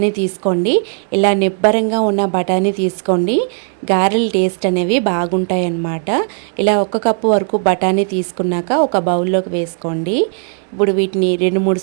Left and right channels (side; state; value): left; silent; 56 dB below the other